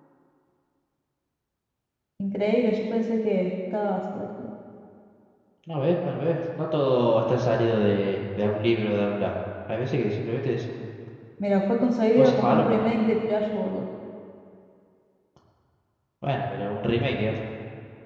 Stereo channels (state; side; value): identical; both; correlation 1.00